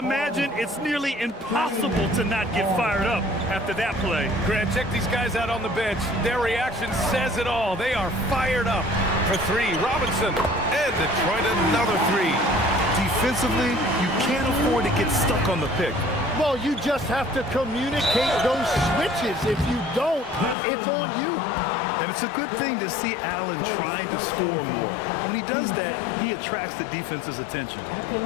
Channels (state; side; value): drops out; right; at 20.6 s